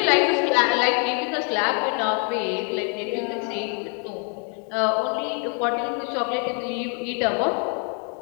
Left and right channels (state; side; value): quieter; right; 39.7 dB